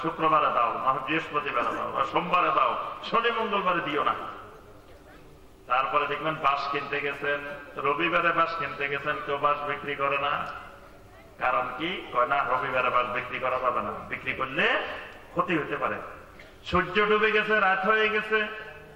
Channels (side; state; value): both; identical; correlation 1.00